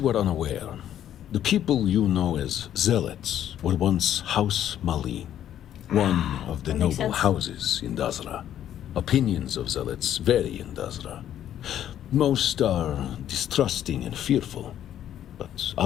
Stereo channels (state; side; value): quieter; right; 11.0 dB